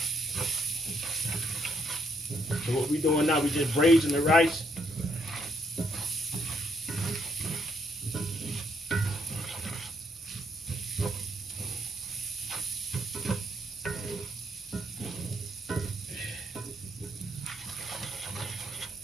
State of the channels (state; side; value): normal; both; correlation 0.72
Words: So what we doing now, we just braising the rice.